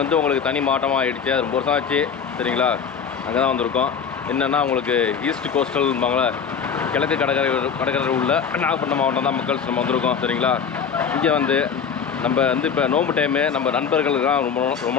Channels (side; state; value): right; quieter; 6.8 dB